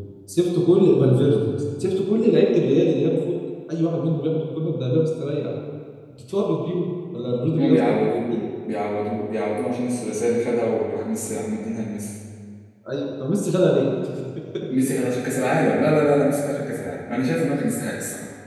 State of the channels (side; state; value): both; identical; correlation 1.00